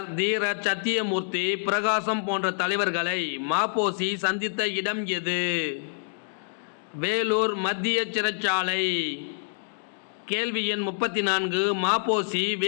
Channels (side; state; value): right; silent; digital silence